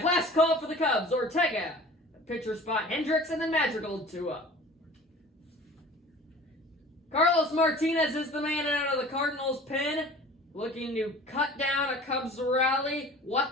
Last call for the Cubs. Ortega. Pitcher spot Hendricks, and then Madrigal 2 up. Carlos Martinez is the man out of the Cardinals pen, looking to cut down a Cubs rally.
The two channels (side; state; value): both; normal; correlation 0.44